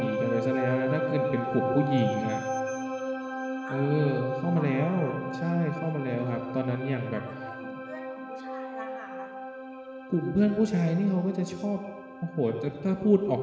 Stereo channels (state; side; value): identical; both; correlation 1.00